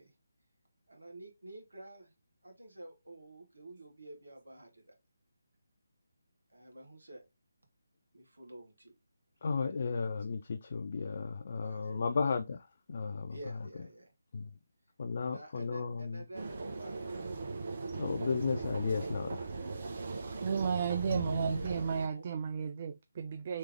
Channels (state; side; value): inverted; both; correlation -0.82